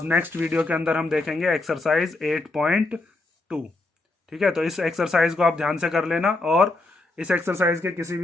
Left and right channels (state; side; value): quieter; right; 3.1 dB